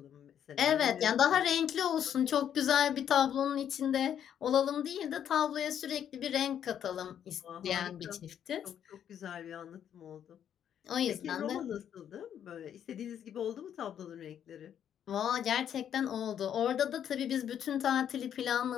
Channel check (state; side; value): quieter; right; 9.3 dB